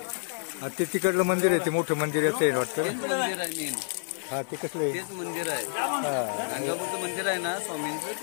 ते तिकडलं मंदिर आहे, ते मोठं मंदिर याचं आहे वाटतं. मंदिर आहे मेन. हा ते कसलं आहे? तेच मंदिर आहे. गाणगापूरचं मंदिर आहे ना स्वामींचं,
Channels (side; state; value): right; silent; 59 dB below the other